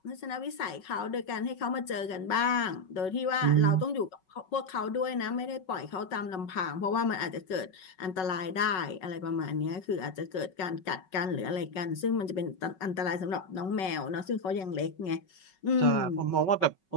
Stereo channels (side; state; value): right; late; 5.3 ms